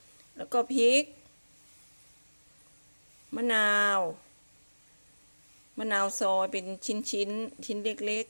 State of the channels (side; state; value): both; inverted; correlation -1.00